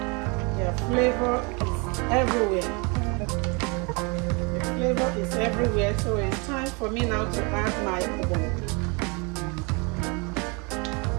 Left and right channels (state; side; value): quieter; left; 30.9 dB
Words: their flavor is everywhere. Flavor is everywhere, so it's time for me now to add my Ogbono.